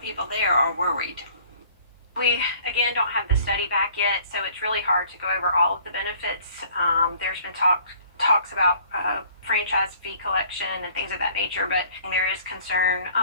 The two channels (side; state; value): both; inverted; correlation -0.55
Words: people there are worried. We, again, don't have the study back yet, so it's really hard to go over all of the benefits. There's been talks about franchise fee collection and things of that nature, but there is concern